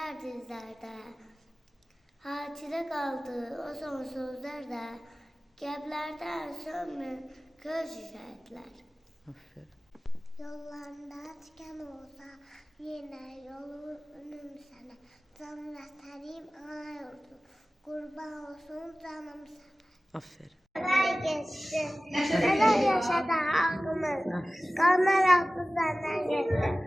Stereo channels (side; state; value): both; normal; correlation 0.97